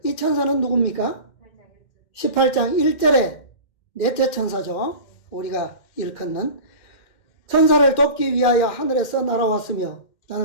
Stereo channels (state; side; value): late; right; 2.1 ms